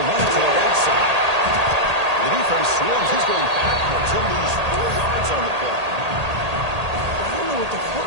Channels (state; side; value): late; left; 1.8 ms